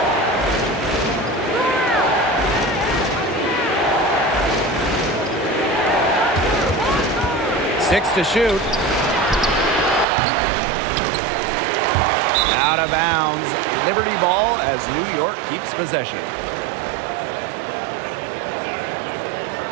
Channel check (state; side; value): drops out; left; at 10.1 s